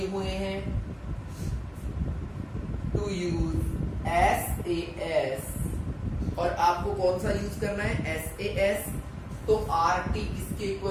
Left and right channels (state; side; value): identical; both; correlation 1.00